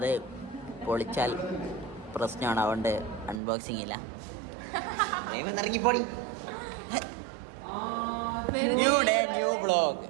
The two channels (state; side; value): drops out; left; at 3.4 s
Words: പൊളിച്ചാൽ പ്രശ്നമാണ്, അതുകൊണ്ട് അൺബോക്സിങ് ഇല്ല. ഇറങ്ങിപ്പോടി. New day new blog.